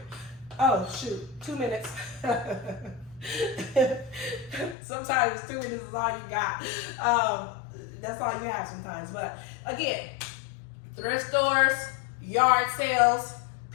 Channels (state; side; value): drops out; right; at 4.8 s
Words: Oh, shoot, 2 minutes. Sometimes 2 minutes is all you got. That's all you have sometimes. But again, thrift stores, yard sales,